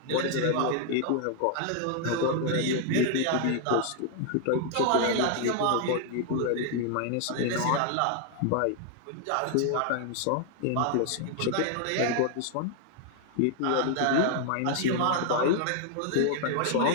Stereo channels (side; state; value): both; different; correlation 0.00